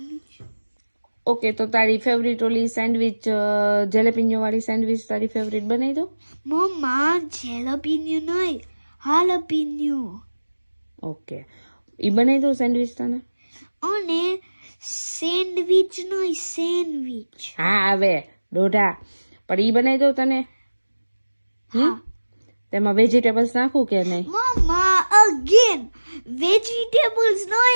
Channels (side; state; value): both; inverted; correlation -1.00